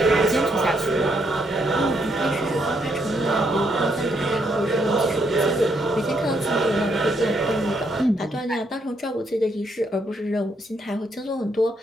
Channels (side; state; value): both; normal; correlation 0.75